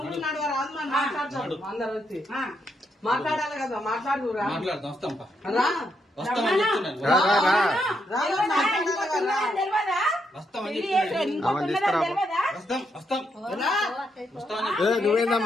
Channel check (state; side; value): normal; both; correlation 0.79